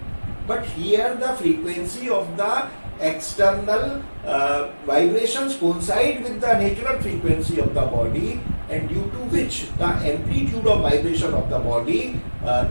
But here the frequency of the external vibrations coincide with the natural frequency of the body, and due to which the amplitude of vibration of the body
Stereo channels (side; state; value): both; inverted; correlation -1.00